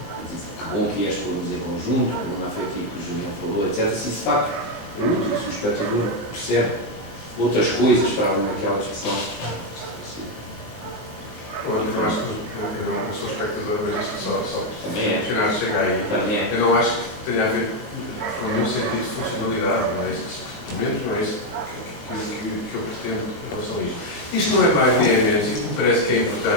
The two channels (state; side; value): late; right; 19 ms